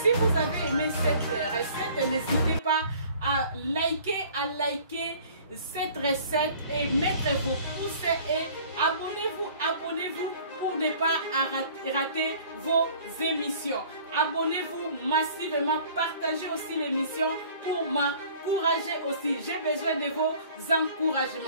vous avez aimé cette recette, n'hésitez pas à liker cette recette et mettre vos pouces et abonnez-vous pour ne pas rater vos émissions. Abonnez-vous massivement, partagez aussi l'émission pour m'encourager aussi. J'ai besoin de vos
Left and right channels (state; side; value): inverted; both; correlation -0.51